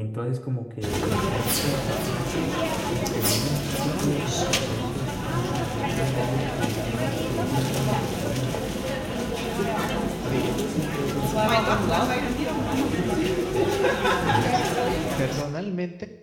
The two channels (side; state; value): both; identical; correlation 1.00